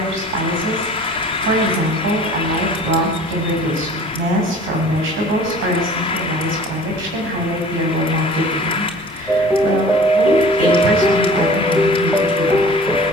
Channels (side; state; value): both; normal; correlation 0.46